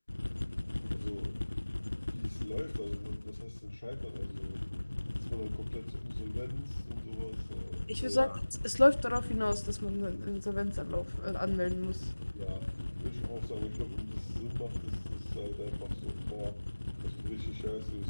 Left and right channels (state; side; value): inverted; both; correlation -1.00